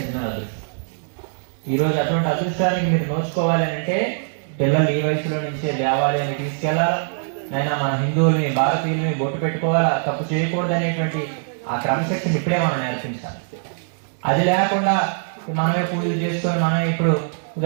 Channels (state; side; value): silent; left; digital silence